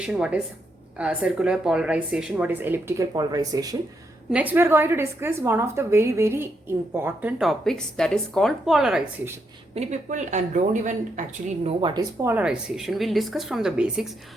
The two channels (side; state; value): both; normal; correlation 0.80